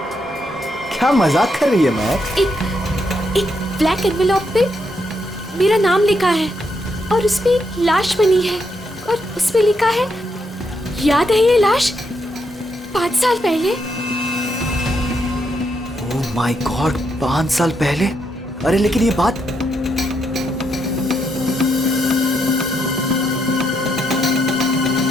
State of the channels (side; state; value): both; normal; correlation 0.79